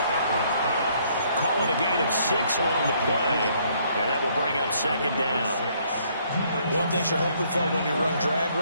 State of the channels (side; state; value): both; inverted; correlation -0.66